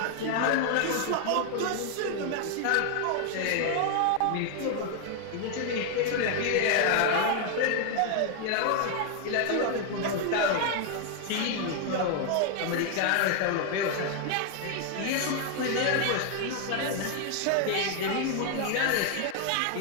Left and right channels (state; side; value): different; both; correlation 0.00